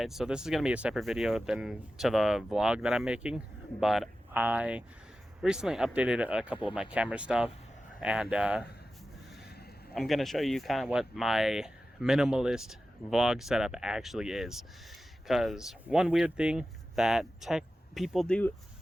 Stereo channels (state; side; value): normal; both; correlation 0.94